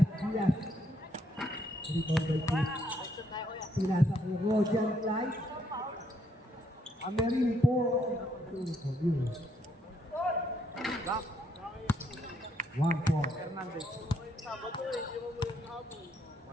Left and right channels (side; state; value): both; normal; correlation 0.73